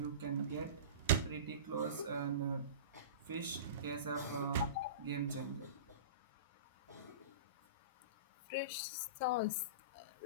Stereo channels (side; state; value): both; inverted; correlation -0.32